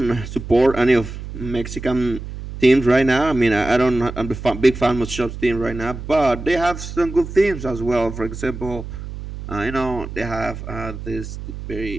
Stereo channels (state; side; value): noise; right; hum, 10 dB below the sound